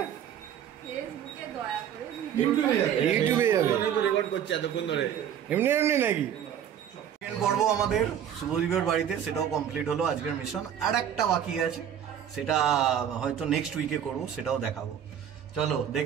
ফেসবুকে দয়া করে ইউটিউবে যাবে। ইউটিউবে যাবে। তো রেকর্ড করছে এতক্ষণ ধরে। এমনি এমনি নাকি? সেকেন্ড পর্ব আমাদের শুভদীপের বাড়িতে, সেটাও কমপ্লিট হলো আজকের মিশন। আর একটা বাকি আছে, সেটা হয়তো নেক্সট উইকে করবো, সেটাও দেখাবো। চলো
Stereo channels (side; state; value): left; quieter; 9.4 dB